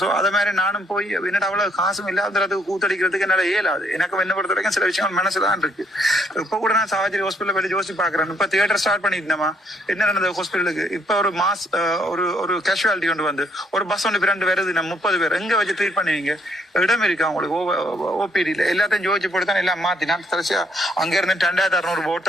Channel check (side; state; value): both; normal; correlation 0.69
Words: சோ அத மாதிரி நானும் போய் என்னடா அவ்வளவு காசும் இல்லாததுக்கு கூத்தடிக்கிறதுக்கு என்னால இயலாது. எனக்கு என்ன பொறுத்த வரைக்கும் சில விஷயங்கள் மனசுதான் இருக்கு. இப்ப கூட நான் சாவச்சேரி ஹாஸ்பிட்டல் போய் யோசிச்சு பாக்குறேன். இப்ப தியேட்டர் ஸ்டார்ட் பண்ணிருந்தேமா, என்ன நடந்தது ஹாஸ்பிட்டலுக்கு? இப்ப ஒரு மாஸ் ஒரு கேஷுவாலிட்டி கொண்டு வந்து ஒரு பஸ் ஒன்று 2 வருது, நம்ம 30 பேர் எங்க வச்சு ட்ரீட் பண்ணுவீங்க? இடம் இருக்கு அவங்களுக்கு ஓபிடியில? எல்லாத்தையும் ஜோதிச்சு போட்டு தான் எல்லாம் மாத்தி நான் கடைசியா அங்க இருந்து 2600 ஓட்